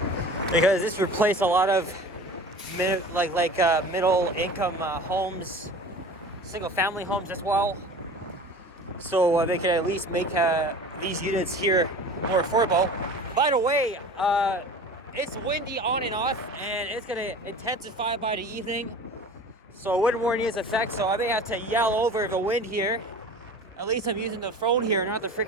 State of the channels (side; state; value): both; normal; correlation 0.39